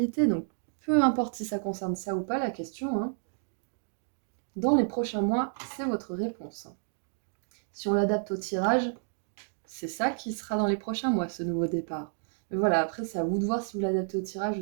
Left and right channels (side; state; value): left; silent; digital silence